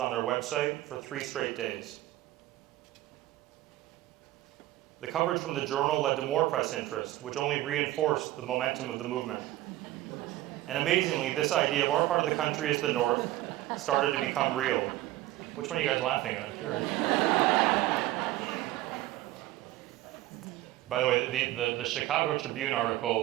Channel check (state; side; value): quieter; left; 15.8 dB